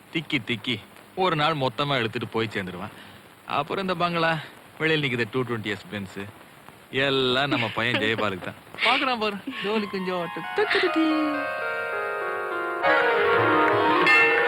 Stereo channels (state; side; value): identical; both; correlation 1.00